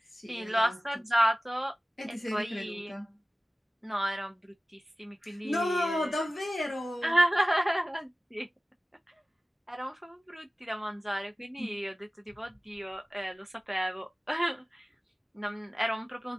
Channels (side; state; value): both; normal; correlation 0.97